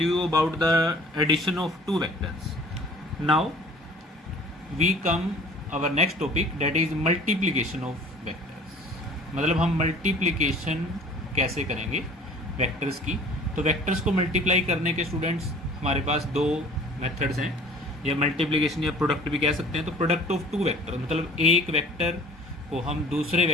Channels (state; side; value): normal; both; correlation 0.48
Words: about the addition of two vectors. Now we come our next topic, that is multiplication of vectors. मतलब हम multiplication कैसे करेंगे vectors की. तो vectors को multiply करने के students हमारे पास दो मेथड्स हैं, या मल्टीप्लिकेशन या प्रोडक्ट भी कह सकते हैं. तो प्रोडक्ट ऑफ टू वेक्टर, मतलब एक वेक्टर को हम दूसरे